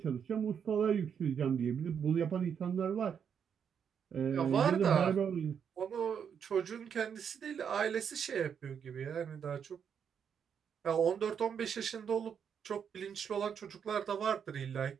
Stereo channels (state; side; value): quieter; left; 7.5 dB